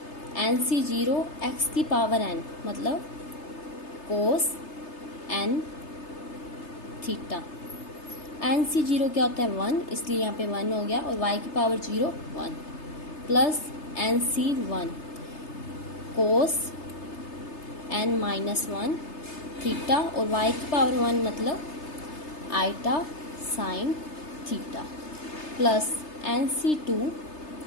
एन सी जीरो एक्स की पावर n मतलब cos n theta. N C zero क्या होता है वन, इसलिए यहाँ पे वन हो गया और y की power zero one plus N C one cos N minus one theta और y की पावर वन मतलब iota sine theta plus N C two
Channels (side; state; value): right; late; 3.3 ms